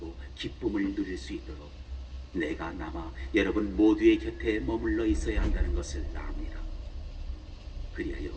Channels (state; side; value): identical; both; correlation 1.00